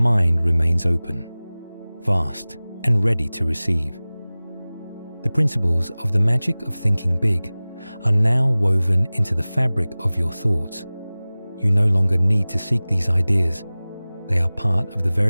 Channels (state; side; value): inverted; both; correlation -0.99